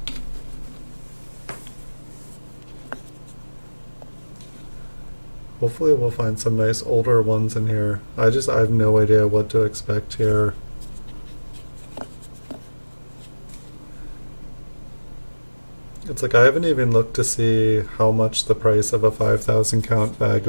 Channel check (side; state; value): both; inverted; correlation -1.00